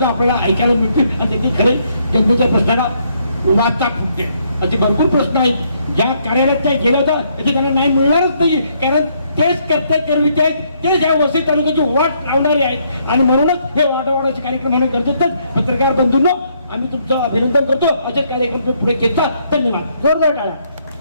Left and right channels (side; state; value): both; inverted; correlation -0.71